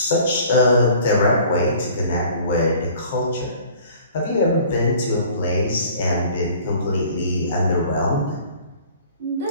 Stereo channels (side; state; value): both; inverted; correlation -0.50